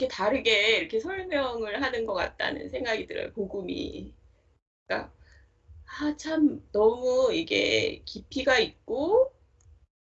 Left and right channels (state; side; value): identical; both; correlation 1.00